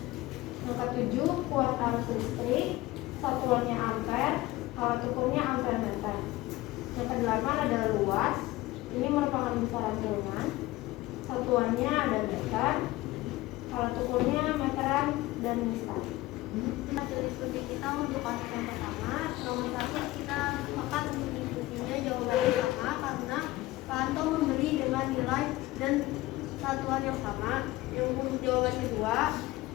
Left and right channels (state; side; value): quieter; right; 18.3 dB